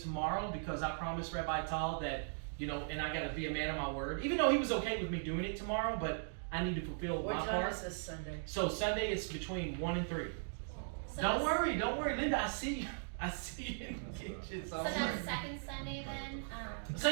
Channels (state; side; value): silent; left; digital silence